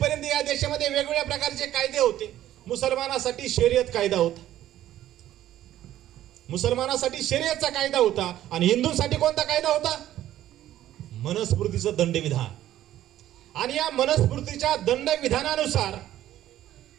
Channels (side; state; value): left; quieter; 12.9 dB